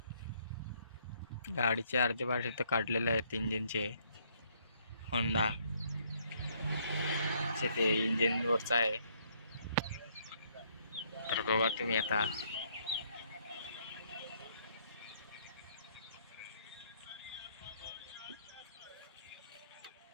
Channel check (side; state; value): both; inverted; correlation -0.68